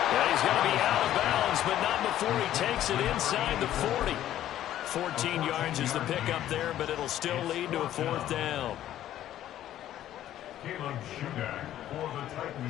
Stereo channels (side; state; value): right; quieter; 12.4 dB